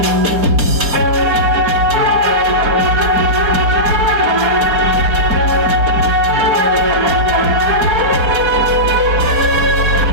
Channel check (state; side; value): late; left; 4.8 ms